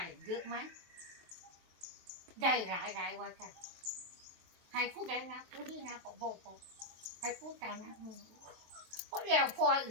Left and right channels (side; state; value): left; late; 23 ms